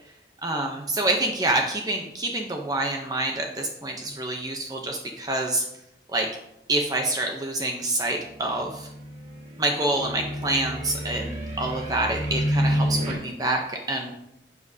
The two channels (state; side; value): normal; both; correlation 0.24